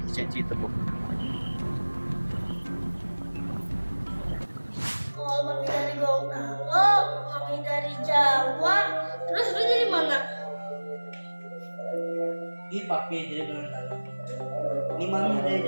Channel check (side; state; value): both; inverted; correlation -1.00